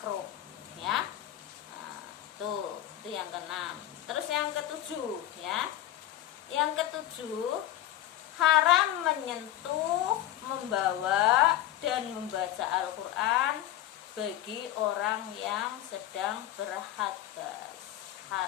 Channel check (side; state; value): right; quieter; 13.2 dB